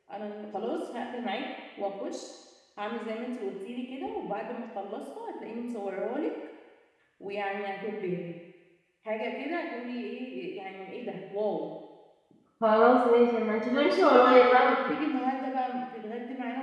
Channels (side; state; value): both; identical; correlation 1.00